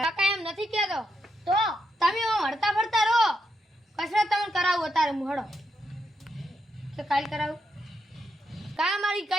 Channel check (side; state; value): both; normal; correlation 0.82